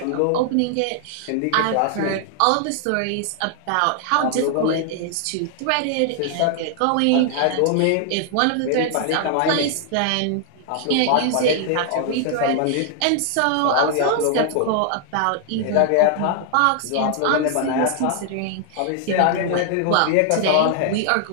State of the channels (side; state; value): both; different; correlation 0.00